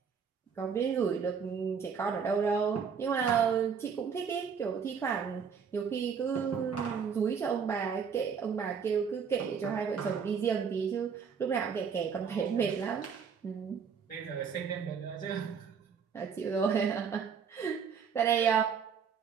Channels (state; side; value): quieter; left; 6.6 dB